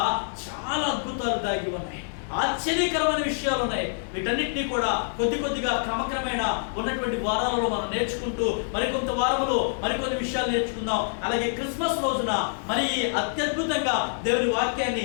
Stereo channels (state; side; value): silent; right; 55 dB below the other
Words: చాలా అద్భుతాలు దాగి ఉన్నాయి, ఆశ్చర్యకరమైన విషయాలు ఉన్నాయి. వీటన్నిటినీ కూడా కొద్దిగా క్రమక్రమేణా ఉన్నటువంటి వారాలలో మనం నేర్చుకుంటూ మరికొంత వారములో మరికొన్ని విషయాలు నేర్చుకుందాం. అలాగే క్రిస్మస్ రోజున మరి అత్యద్భుతంగా దేవుని